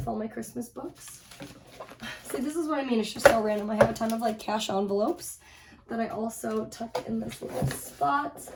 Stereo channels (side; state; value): both; identical; correlation 1.00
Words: all my Christmas books. See, this is what I mean. It's just so random. I have a ton of like cash envelopes that I also tuck in this little spot